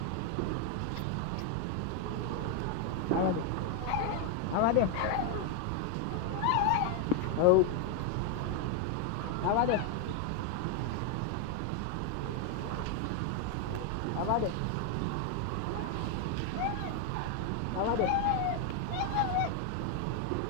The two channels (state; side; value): different; both; correlation 0.01